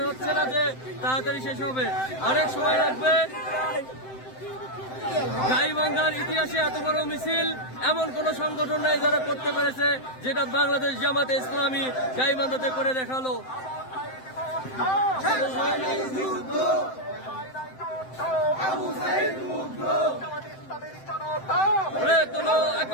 হচ্ছে না যে তাড়াতাড়ি শেষ হবে, অনেক সময় লাগবে। গাইবান্ধার ইতিহাসে এত বড় মিছিল এমন কোন সংগঠন নাই যারা করতে পেরেছে, যেটা বাংলাদেশ জামাতে ইসলামী গাইবান্ধাতে করে দেখালো। গড়ে তোলো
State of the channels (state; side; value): late; right; 7.8 ms